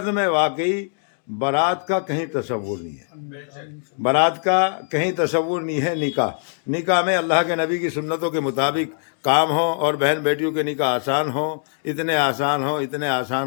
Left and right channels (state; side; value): silent; right; 64 dB below the other